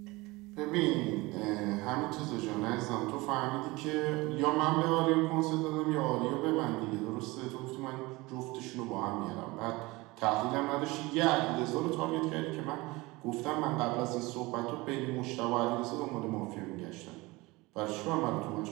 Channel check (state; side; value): quieter; left; 22.4 dB